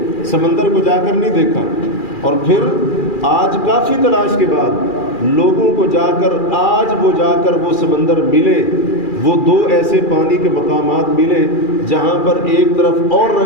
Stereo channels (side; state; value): right; late; 2.4 ms